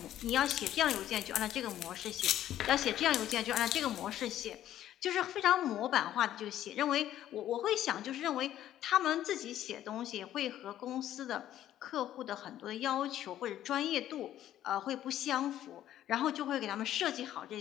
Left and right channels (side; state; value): right; quieter; 12.2 dB